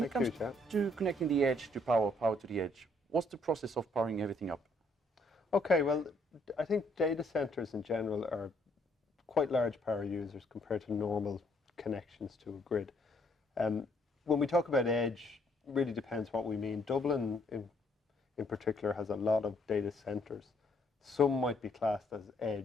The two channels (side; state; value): both; normal; correlation 0.68